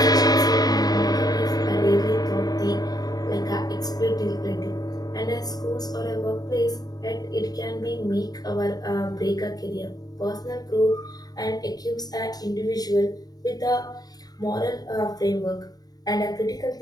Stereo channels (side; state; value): right; late; 0.19 ms